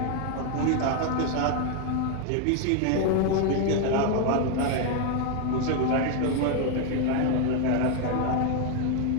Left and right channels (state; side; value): different; both; correlation 0.01